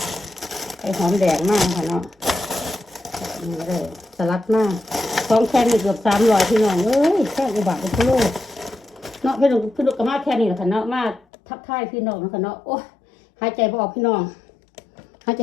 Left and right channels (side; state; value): right; drops out; at 11.2 s